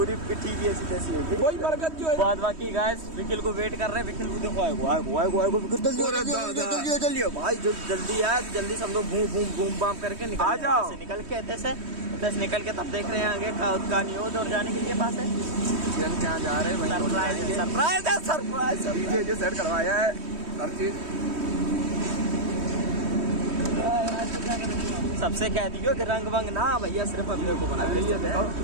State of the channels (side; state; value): left; late; 3.1 ms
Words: पिट्ठी की ऐसी तैसी है वही बरकत जो है। बाद बाकी गाइस विकिल को वेट कर रहे हैं। विकिल को देखो आएगो जल्दी भाई, जो जल्दी आए जल्दी सब लोग घूम बाम करके निकल जाओ। निकल के दस निकल के तब देख रहे हैं आगे का नहीं हो और जाने के लिए पास है। किरण क्या जा रहे हैं? सरप्राइज डीजे जो सेट करवाया है हर चीज। सबसे कह दियो कि रंग वंग ना भैया, सिर्फ अपने को बना